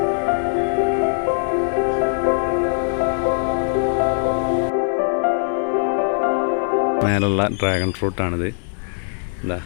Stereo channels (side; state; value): right; silent; digital silence